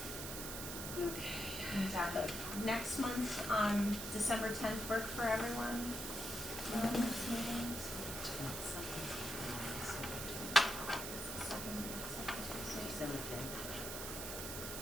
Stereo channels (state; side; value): noise; right; hiss, 5 dB below the sound